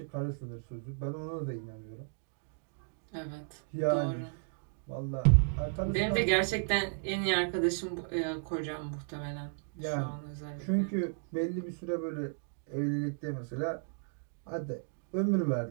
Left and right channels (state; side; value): silent; left; digital silence